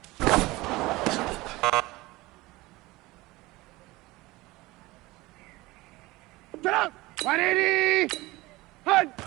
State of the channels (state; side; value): quieter; left; 20.6 dB